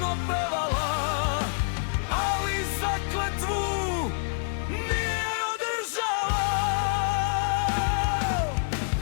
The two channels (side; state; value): right; silent; digital silence